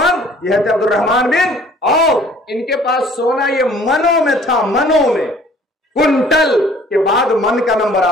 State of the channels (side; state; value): both; normal; correlation 0.54